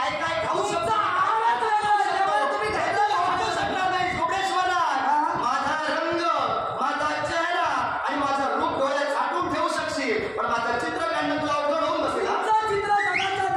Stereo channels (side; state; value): both; identical; correlation 1.00